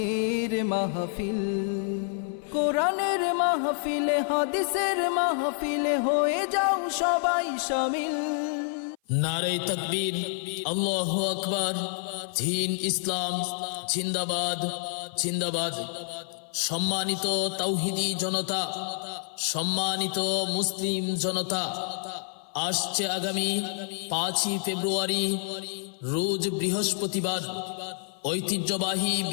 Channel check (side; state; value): right; silent; 56 dB below the other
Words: মাহফিল। কোরআনের মাহফিলে হাদিসের মাহফিলে হয়ে যাও সবাই শামিল। নারে তাকবীর, আল্লাহু আকবার, দ্বীন ইসলাম জিন্দাবাদ জিন্দাবাদ। সম্মানিত তাওহীদি জনতা, সম্মানিত মুসলিম জনতা, আসছে আগামী 5ই ফেব্রুয়ারি রোজ বৃহস্পতিবার ঐতিহ্যবাহী